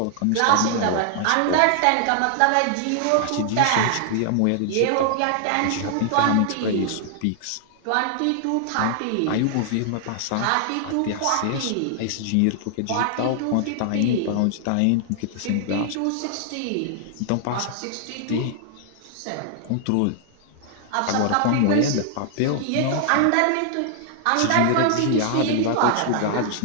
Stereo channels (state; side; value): different; both; correlation 0.00